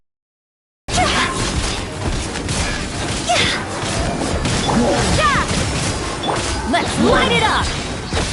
Let's light it up!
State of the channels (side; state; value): both; identical; correlation 1.00